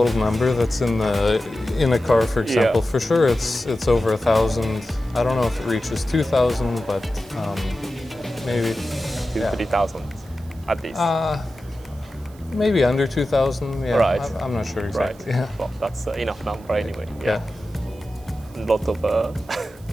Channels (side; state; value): right; noise; hiss, 27 dB below the sound